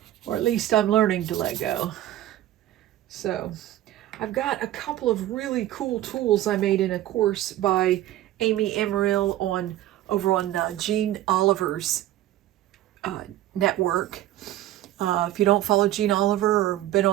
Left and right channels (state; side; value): quieter; left; 13.9 dB